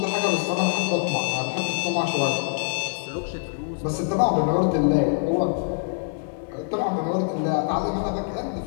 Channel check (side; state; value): right; silent; digital silence